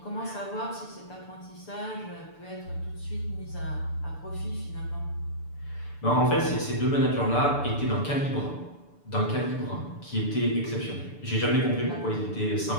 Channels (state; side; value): late; right; 6.9 ms